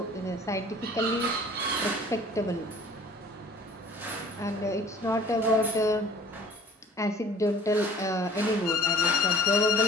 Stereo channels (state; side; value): normal; both; correlation 0.49